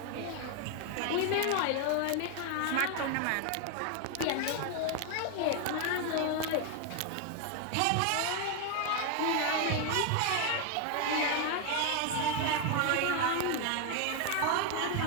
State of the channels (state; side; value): different; both; correlation 0.01